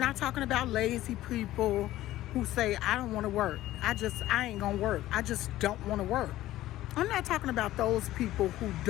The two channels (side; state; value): right; quieter; 15.1 dB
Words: talking about lazy people who say, I don't want to work. I ain't gonna work. I just don't want to work. I'm not talking about those people